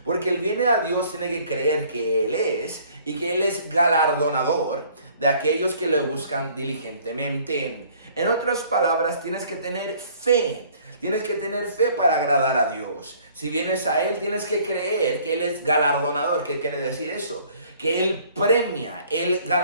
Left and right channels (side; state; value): both; inverted; correlation -0.56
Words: porque el viene a Dios tiene que creer que Él es y que Él es galardonador de aquellos que le buscan diligentemente. En otras palabras, tienes que tener fe. Tienes que tener fe para agradar a Dios. Si vienes a Él, tienes que creer que Él es galardonador. ¿Qué quiere decir eso? Que Él premia, Él